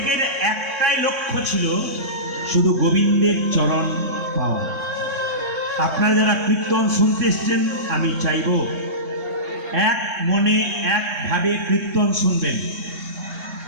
একটাই লক্ষ্য ছিল, শুধু গোবিন্দের চরণ পাওয়া। আপনারা যারা কীর্তন শুনতে এসছেন, আমি চাইব এক মনে একভাবে কীর্তন শুনবেন।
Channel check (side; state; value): left; late; 3.6 ms